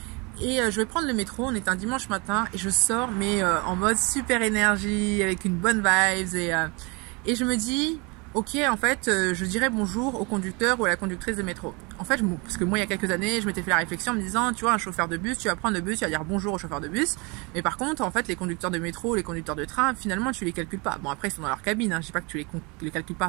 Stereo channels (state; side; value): quieter; left; 29.3 dB